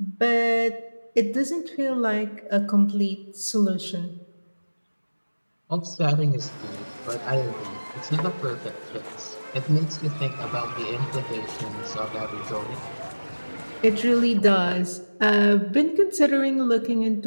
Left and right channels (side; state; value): both; inverted; correlation -1.00